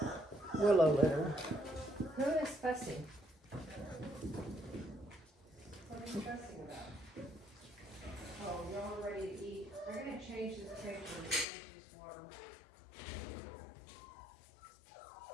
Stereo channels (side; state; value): right; drops out; at 11.5 s